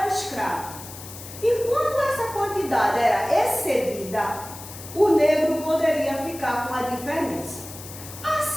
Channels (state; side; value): noise; left; hiss, 14 dB below the sound